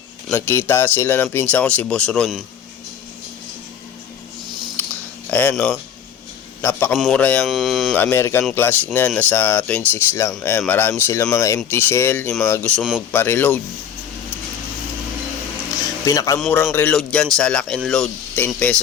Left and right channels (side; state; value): right; quieter; 8.5 dB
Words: Nagkita sila ng pinsan ko, si Boss Ron. Ayan, no. Napakamura yung American Classic na yan, nasa 26 lang. Ayan, marami silang mga empty shell, yung mga gusto magpa-reload. Pinakamurang reload dyan sa Lock and Load, 10